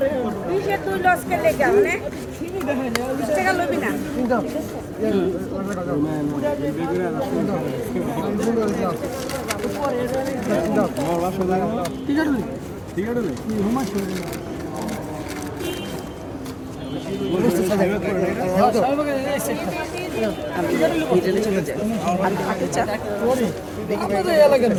20 তুই লস কে লেগে মানে 20 টাকা লবি না।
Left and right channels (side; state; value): both; identical; correlation 1.00